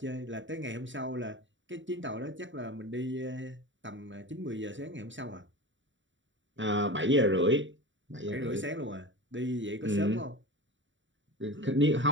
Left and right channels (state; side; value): late; left; 0.55 ms